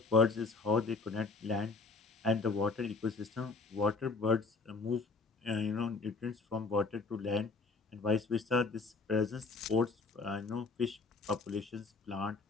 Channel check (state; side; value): quieter; right; 4.0 dB